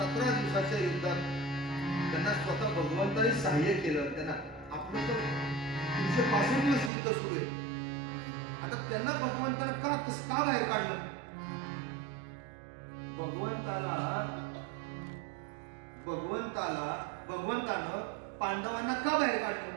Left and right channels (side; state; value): left; drops out; at 6.9 s